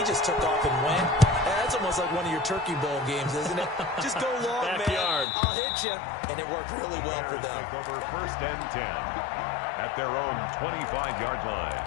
just took off and went. That's almost like one of your Turkey Bowl games, isn't it? Just go long, Backyard. Man. I'll hit you. And it worked really well for them. Take over 1st and 10 at their own 25-yard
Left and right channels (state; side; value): drops out; right; at 5.2 s